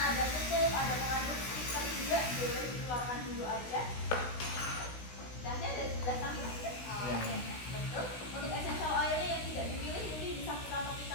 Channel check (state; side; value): late; right; 16 ms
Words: ada tutup, ada pengaduk stiker juga, boleh dikeluarkan dulu aja. Gelasnya ada di sebelah samping aja. Oke, betul. Untuk essential oilnya yang tidak dipilih, jadi bisa kita